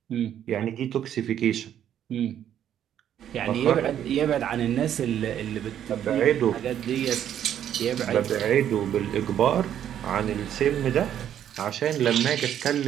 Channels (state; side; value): quieter; left; 10.2 dB